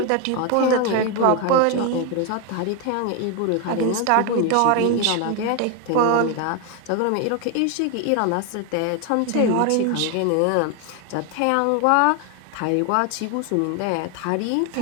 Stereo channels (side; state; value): both; different; correlation 0.01